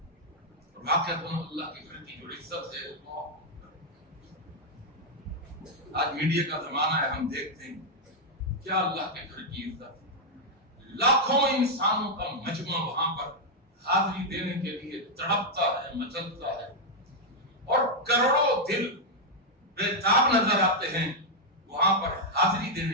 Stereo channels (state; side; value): normal; both; correlation -0.02